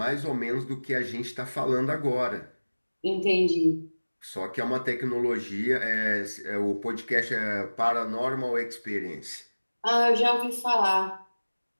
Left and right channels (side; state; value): both; inverted; correlation -1.00